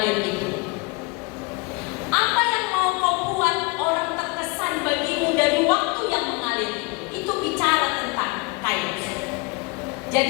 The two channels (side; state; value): right; quieter; 28.0 dB